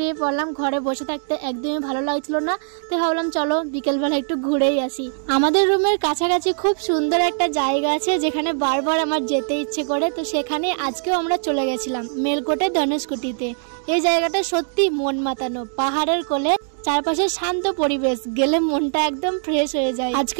পড়লাম। ঘরে বসে থাকতে একদমই ভালো লাগছিল না, তো ভাবলাম চলো বিকেলবেলা একটু ঘুরেই আসি। আমাদের রুমের কাছাকাছি খুব সুন্দর একটা জায়গা আছে যেখানে বারবার আমার যেতে ইচ্ছে করে, তো সেখানে আজকেও আমরা চলে গেছিলাম মেলকোটে ধনুষকুটিতে। এই জায়গাটা সত্যি মন মাতানো, পাহাড়ের কোলে, চারপাশে শান্ত পরিবেশ, গেলে মনটা একদম ফ্রেশ হয়ে যায়।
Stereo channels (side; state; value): left; silent; digital silence